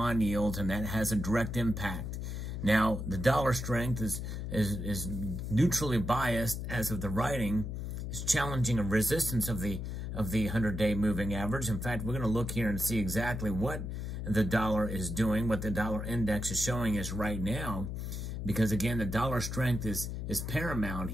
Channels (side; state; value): left; noise; hum, 5 dB below the sound